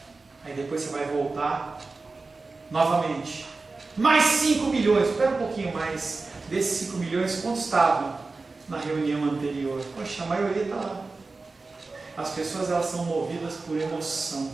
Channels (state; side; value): quieter; left; 3.8 dB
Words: Aí depois você vai voltar novamente. Mais 5 milhões, espera um pouquinho mais. Desses 5 milhões, quantos estavam na reunião anterior? Poxa, a maioria está lá. As pessoas elas são movidas por emoção.